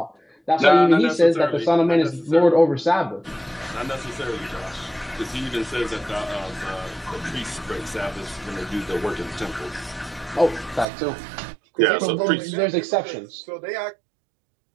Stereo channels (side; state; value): left; drops out; at 10.9 s